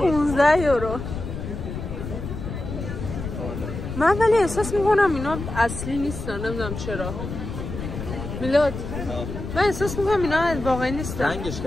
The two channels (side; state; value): left; noise; rumble, 7 dB below the sound